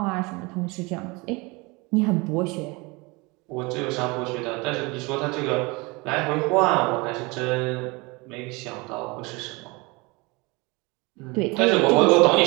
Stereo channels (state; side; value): quieter; left; 26.0 dB